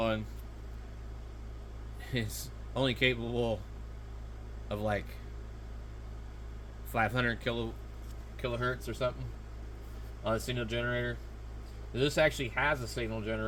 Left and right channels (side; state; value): both; identical; correlation 1.00